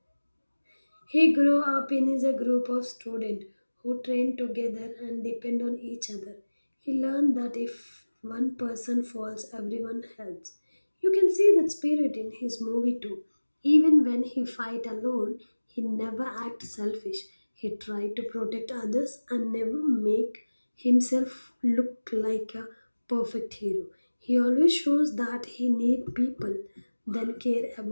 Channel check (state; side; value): inverted; both; correlation -1.00